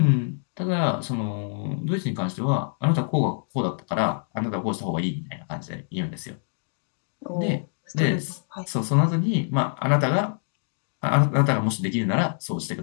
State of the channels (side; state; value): right; silent; 61 dB below the other